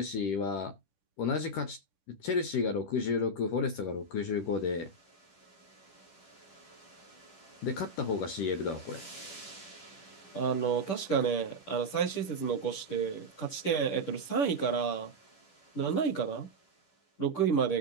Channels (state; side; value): late; right; 10 ms